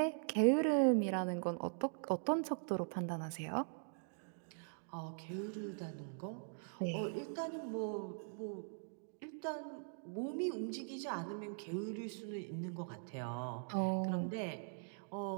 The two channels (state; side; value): silent; left; digital silence